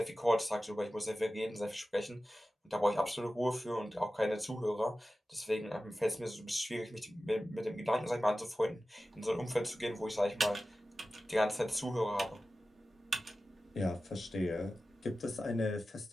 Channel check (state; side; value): normal; both; correlation 0.95